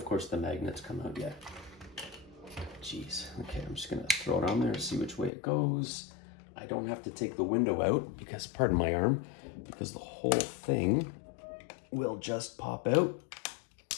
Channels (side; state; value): right; drops out; at 5.3 s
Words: course, the magnets come out yet. Jeez. Okay, I'm just going to throw it on there and see which way it goes. I don't have to take the window out because, pardon my arm, because the whole thing will just pop out.